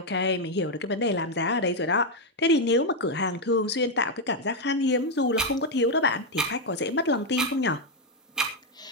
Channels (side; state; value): both; normal; correlation 0.02